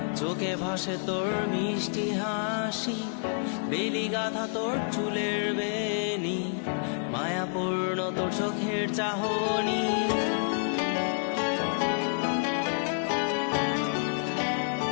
চোখে ভাসে তোর মিষ্টি হাসি, বেলি গাথা তোর চুলের বেনি, মায়াপূর্ণ তোর চোখের চাহনি।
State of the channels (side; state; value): right; silent; digital silence